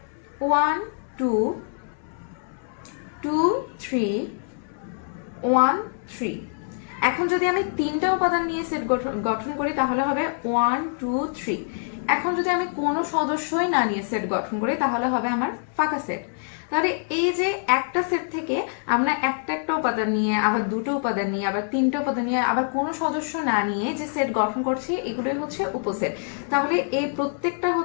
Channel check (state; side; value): silent; right; 62 dB below the other